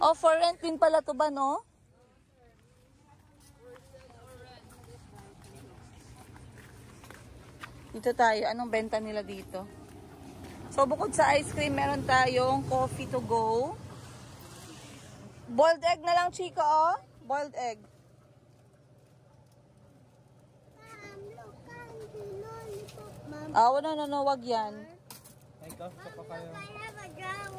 For rent din pala to ba, no? Dito tayo. Anong benta nila dito? So, bukod sa ice cream, meron tayong coffee to go. Boiled egg na lang, Chico, oh. Boiled egg. Look, candy lollipop. Mom, No, wag yan. Ay, kafe pa kayo. I have a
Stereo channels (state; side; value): identical; both; correlation 1.00